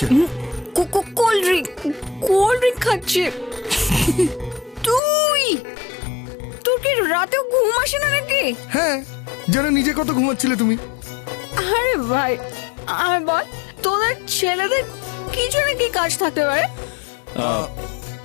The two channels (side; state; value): right; drops out; at 5.0 s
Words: কোল্ড ড্রিঙ্ক খাচ্ছে। তোর কি রাতেও ঘুম আসে না নাকি? হ্যাঁ, যেন নিজে কত ঘুমাচ্ছিলে তুমি। আরে ভাই আমি বল, তোদের ছেলেদের কিছু না কি কাজ থাকতে পারে।